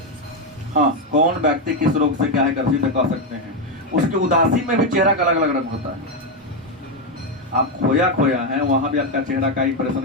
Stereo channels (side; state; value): both; normal; correlation 0.06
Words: हाँ, कौन व्यक्ति किस रोग से क्या है ग्रसित है कह सकते हैं। उसकी उदासी में भी चेहरा का अलग अलग रंग होता है। आप खोया खोया हैं, वहां भी आपका चेहरा का